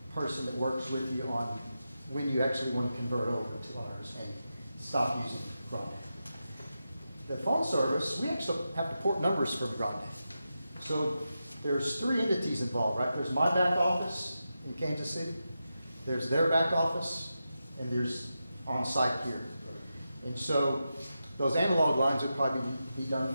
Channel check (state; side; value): inverted; both; correlation -0.89